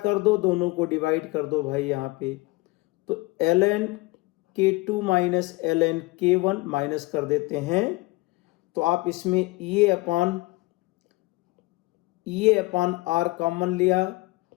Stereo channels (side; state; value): right; quieter; 22.9 dB